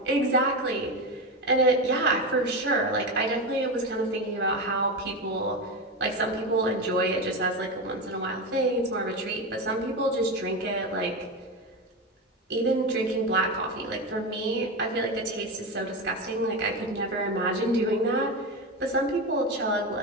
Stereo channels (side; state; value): both; normal; correlation 0.18